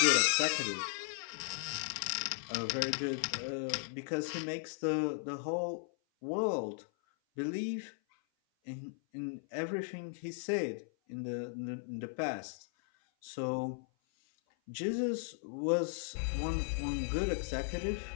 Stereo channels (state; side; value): silent; right; 53 dB below the other